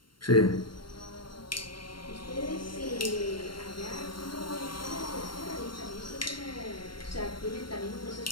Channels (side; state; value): right; late; 0.72 ms